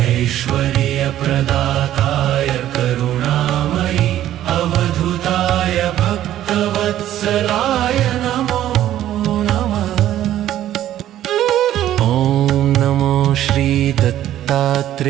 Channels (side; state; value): left; quieter; 12.5 dB